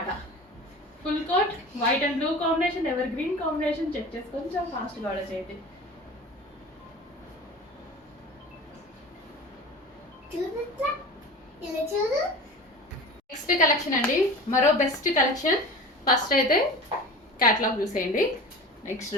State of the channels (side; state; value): both; normal; correlation 0.35